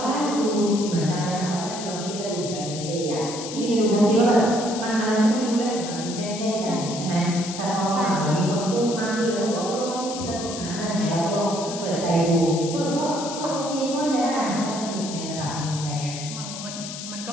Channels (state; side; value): noise; left; hiss, 9 dB below the sound